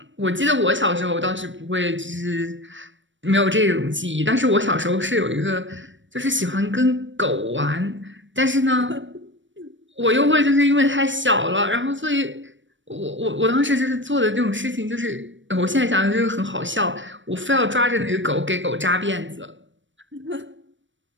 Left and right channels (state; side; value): late; left; 0.55 ms